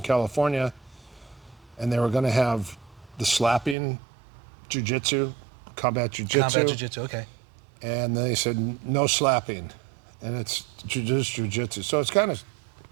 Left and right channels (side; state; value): left; drops out; at 3.8 s